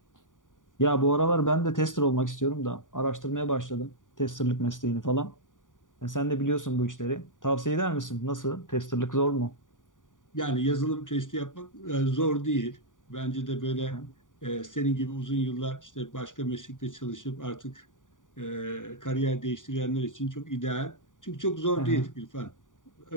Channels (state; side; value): late; right; 0.88 ms